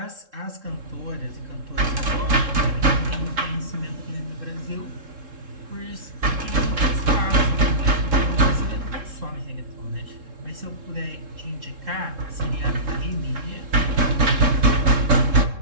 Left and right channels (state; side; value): late; left; 3.7 ms